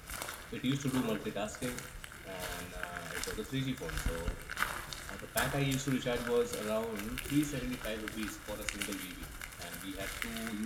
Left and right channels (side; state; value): both; identical; correlation 1.00